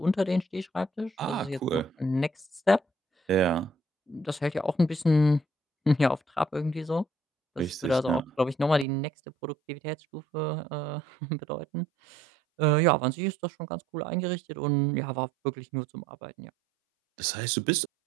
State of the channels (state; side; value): drops out; left; at 8.8 s